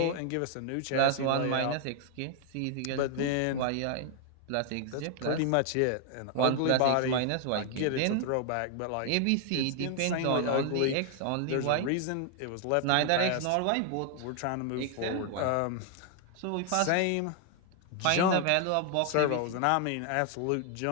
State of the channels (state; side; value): different; both; correlation 0.00